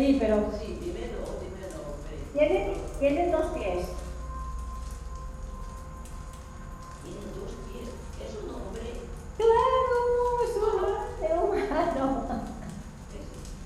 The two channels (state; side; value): identical; both; correlation 1.00